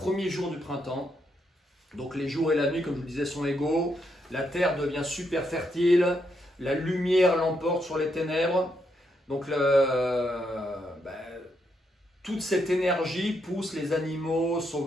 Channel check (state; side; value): normal; both; correlation 0.79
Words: jour du printemps. Donc les jours et la nuit, comme je vous le disais, sont égaux. La terre devient super fertile. La lumière l'emporte sur les ténèbres. Donc toute cette énergie pousse les animaux